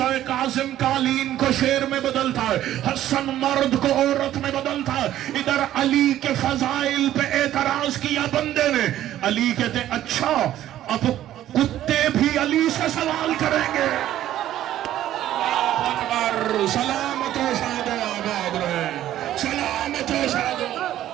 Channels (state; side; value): quieter; left; 12.7 dB